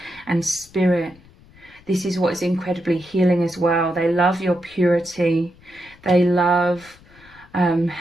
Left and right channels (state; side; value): noise; left; rumble, 26 dB below the sound